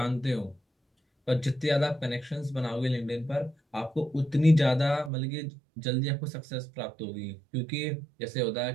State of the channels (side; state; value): left; drops out; at 5.1 s